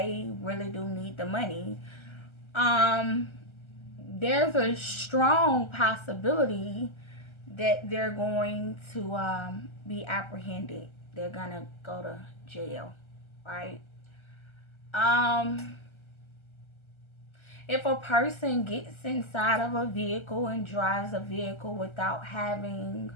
really do need the money, um, there's a strong possibility that they're going to be apprehended. They're gonna go to jail, right? Um, if a person gets inside of a vehicle and drives a vehicle without having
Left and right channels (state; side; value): late; right; 1.3 ms